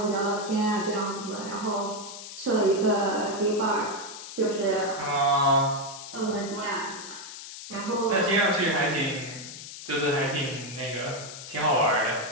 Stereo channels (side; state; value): left; noise; hiss, 12 dB below the sound